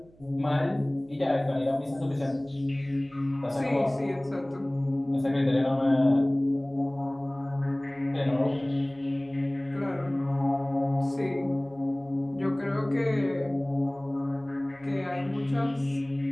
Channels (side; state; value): right; noise; hum, 27 dB below the sound